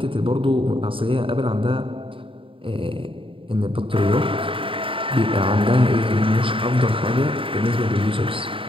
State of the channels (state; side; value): late; left; 0.25 ms